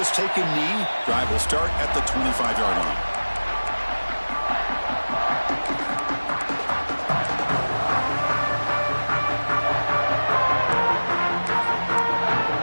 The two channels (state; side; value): inverted; both; correlation -1.00